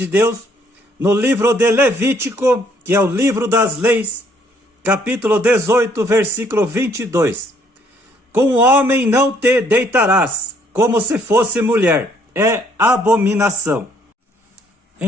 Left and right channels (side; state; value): both; normal; correlation 0.65